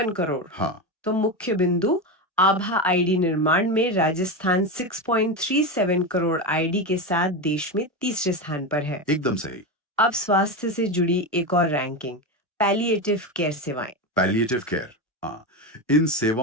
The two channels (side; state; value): both; normal; correlation 0.17